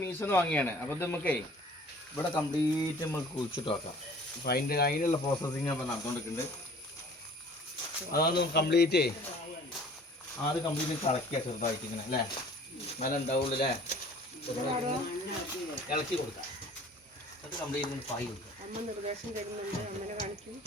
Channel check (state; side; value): normal; both; correlation 0.50